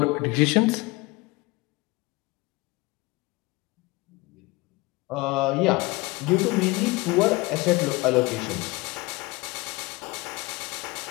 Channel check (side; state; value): right; quieter; 23.4 dB